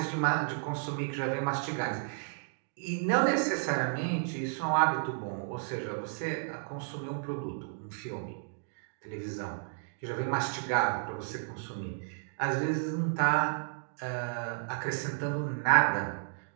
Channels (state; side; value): silent; left; digital silence